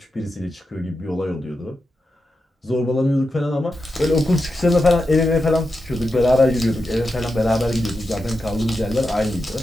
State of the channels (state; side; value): normal; both; correlation 0.89